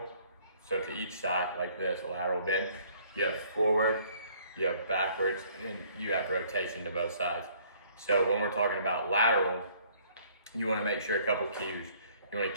so to each side like this, a lateral bend. You have forward, you have backwards, and you have rotation to both sides. So when we're talking about lateral, you want to make sure a couple cues. You want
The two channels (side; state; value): both; inverted; correlation -0.59